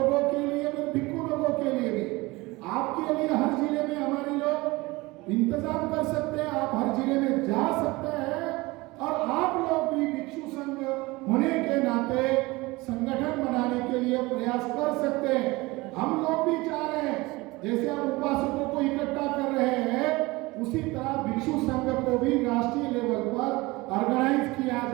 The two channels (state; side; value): quieter; left; 22.1 dB